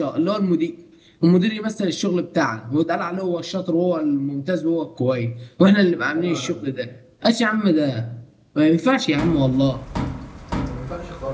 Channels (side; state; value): both; identical; correlation 1.00